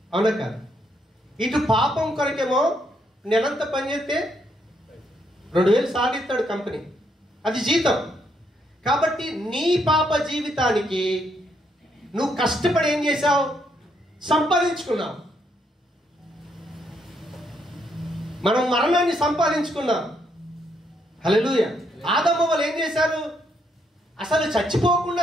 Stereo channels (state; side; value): normal; both; correlation 0.74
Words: అవునా కాదు? ఇటు పాపం కొరకేమో నెలంతా పని చేస్తే 2000 సాధిస్తాడు కంపెనీ, అది జీతం. కాబట్టి నీ పాప జీవితానికి నువ్వు కష్టపడి ఏం చేశావు? సంపాదించుకున్నావు. మనం మరణాన్ని సంపాదించుకున్నాం. హల్లెలూయా. ఆదాము వాళ్ళు ఏం చేశారు? అసలు చచ్చిపోకుండా